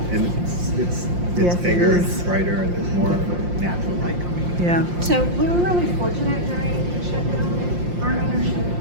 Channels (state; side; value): late; left; 5.7 ms